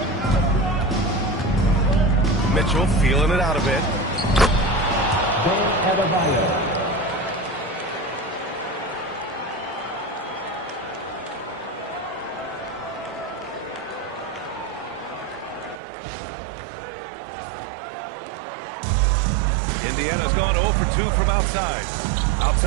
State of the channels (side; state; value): left; drops out; at 15.8 s